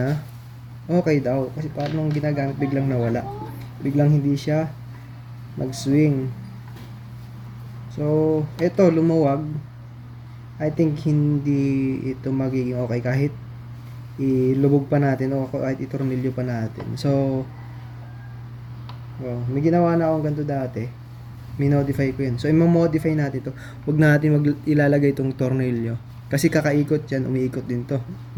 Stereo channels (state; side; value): identical; both; correlation 1.00